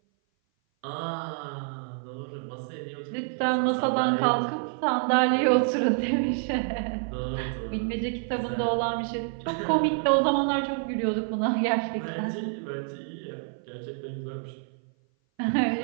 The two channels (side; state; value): left; silent; 57 dB below the other